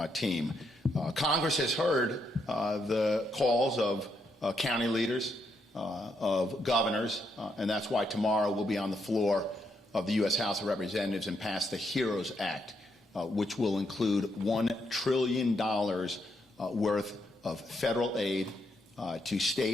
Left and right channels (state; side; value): normal; both; correlation 0.78